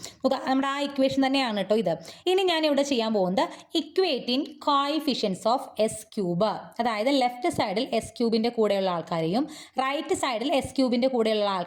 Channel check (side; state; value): both; identical; correlation 1.00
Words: നോക്കുക, നമ്മുടെ ആ ഇക്വേഷൻ തന്നെയാണ് കേട്ടോ ഇത്. ഇനി ഞാൻ ഇവിടെ ചെയ്യാൻ പോകുന്നത് equating coefficients of S cube, അതായത് ലെഫ്റ്റ് സൈഡിൽ എസ് ക്യൂബിൻ്റെ കൂടെയുള്ള ആൾക്കാരെയും റൈറ്റ് സൈഡിൽ എസ് ക്യൂബിൻ്റെ കൂടെയുള്ള